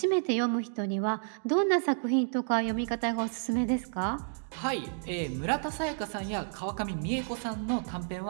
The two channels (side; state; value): left; silent; digital silence